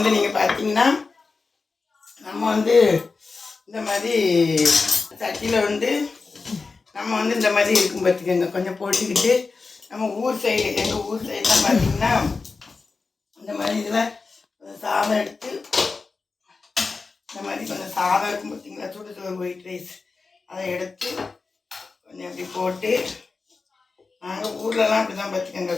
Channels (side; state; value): right; quieter; 4.3 dB